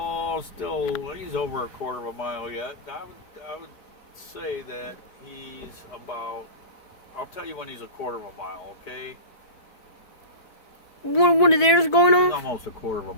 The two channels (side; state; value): right; late; 4.6 ms